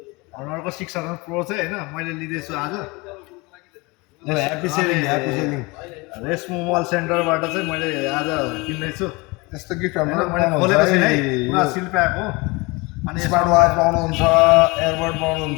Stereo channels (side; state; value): right; quieter; 25.5 dB